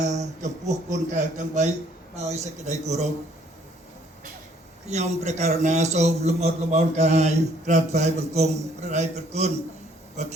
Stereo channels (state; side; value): normal; both; correlation 0.63